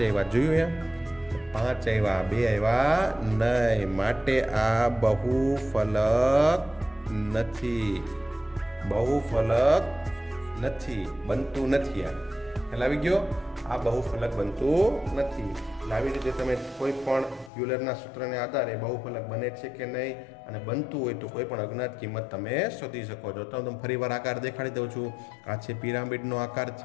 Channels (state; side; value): drops out; right; at 17.5 s